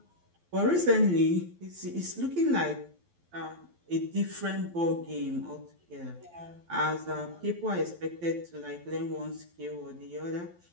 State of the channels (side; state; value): left; late; 12 ms